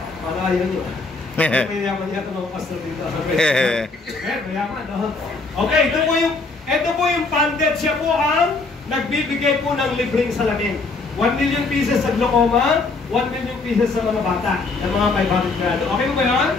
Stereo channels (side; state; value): right; quieter; 3.8 dB